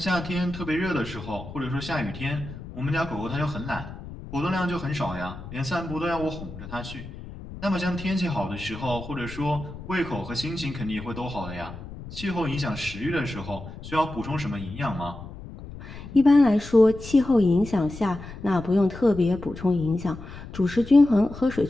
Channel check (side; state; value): left; noise; rumble, 13 dB below the sound